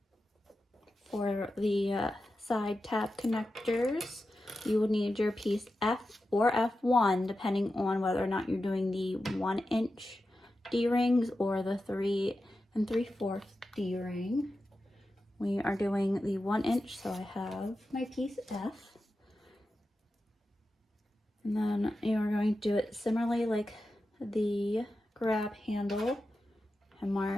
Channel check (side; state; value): both; normal; correlation 0.91